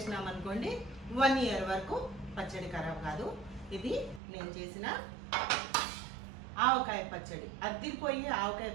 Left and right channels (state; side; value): drops out; left; at 4.2 s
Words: అనుకోండి, 1 year వరకు పచ్చడి ఖరాబ్ కాదు. ఇది నేను చేసిన ఆవకాయ పచ్చడి, అద్దిపోయి ఆవకాయ